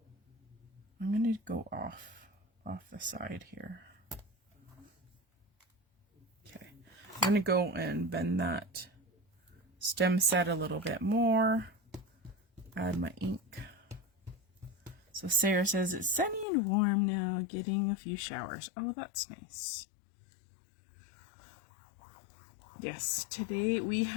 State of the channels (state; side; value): drops out; right; at 16.4 s